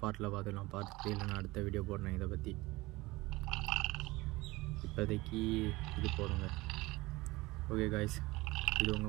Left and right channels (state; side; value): quieter; left; 21.0 dB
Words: பார்ட்டில் பார்த்துக்கலாம். பார்ட் 3ல நான் அடுத்த வீடியோ போடுறேன் இதை பற்றி. இப்போதைக்கு இது போடுங்க. ஓகே காய்ஸ், இது